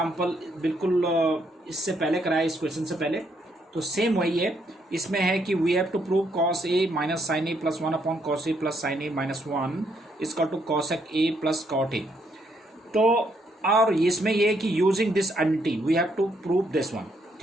बिल्कुल इससे पहले कराया, इस क्वेश्चन से पहले, तो सेम वही है। इसमें है कि we have to prove cos A minus sine A plus 1 upon cos A plus sine A minus 1 is equal to cosec A plus cot A. तो और इसमें ये है कि using this identity we have to prove this one.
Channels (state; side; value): normal; both; correlation 0.73